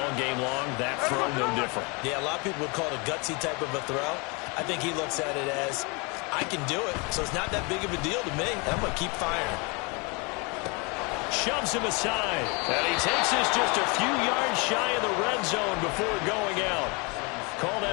game long. That throw, no different. Yeah, a lot of people would call it a gutsy type of a throw. I think he looks at it as, I can do it, so it's not that big of a deal to me. I'm going to keep firing. Shoves him aside. And he takes this just a few yards shy of the red zone before going out. Call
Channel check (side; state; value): right; quieter; 30.1 dB